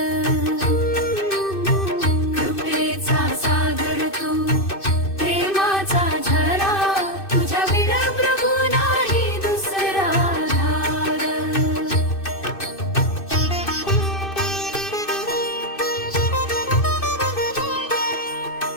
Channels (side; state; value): right; late; 2.6 ms